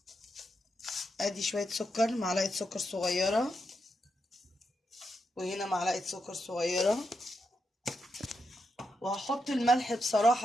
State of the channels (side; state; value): both; normal; correlation 0.84